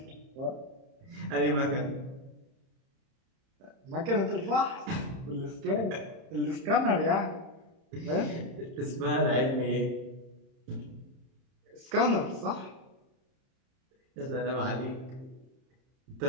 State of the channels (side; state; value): left; late; 30 ms